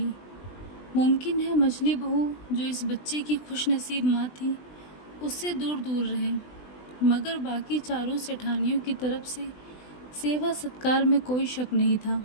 मुमकिन है मछली बहू जो इस बच्चे की खुशनसीब माँ थी, उससे दूर दूर रहें, मगर बाकी चारों सेठानियों की तरफ से सेवा सत्कार में कोई शक नहीं था।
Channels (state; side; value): late; right; 20 ms